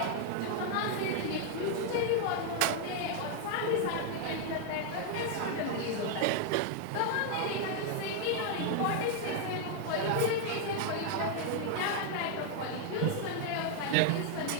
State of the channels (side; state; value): both; different; correlation 0.00